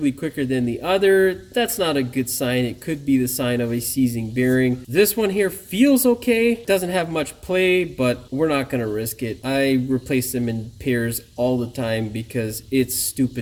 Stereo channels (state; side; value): identical; both; correlation 1.00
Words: quicker than the other, that's not a good sign. It could be the sign of a seizing bearing. This one here feels okay. Doesn't have much play, but we're not going to risk it. I replace them in pairs all the time, because it's